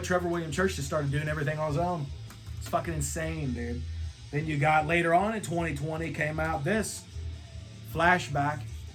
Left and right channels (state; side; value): identical; both; correlation 1.00